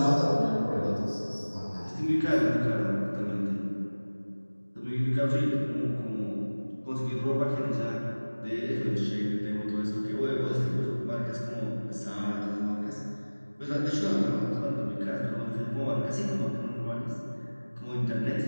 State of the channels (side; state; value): both; inverted; correlation -1.00